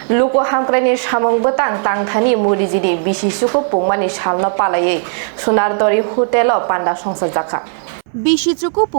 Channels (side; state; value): left; silent; 61 dB below the other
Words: Luku Hamkuraini Samwng betang tangthani murijini Bisi Chuku Pungmani salno palayei Sonar Tori Hotel Panda Khulaijakha Bisi Chuku